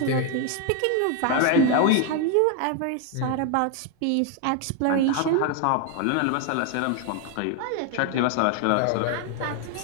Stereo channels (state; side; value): different; both; correlation 0.01